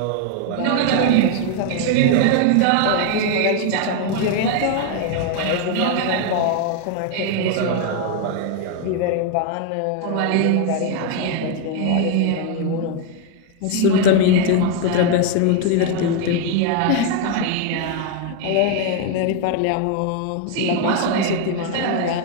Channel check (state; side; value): different; both; correlation 0.00